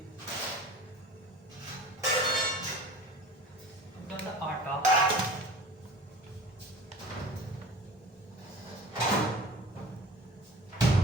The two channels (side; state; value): both; normal; correlation 0.40